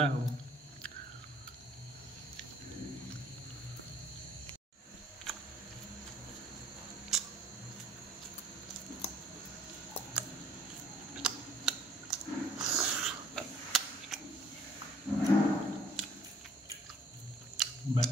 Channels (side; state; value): both; normal; correlation 0.59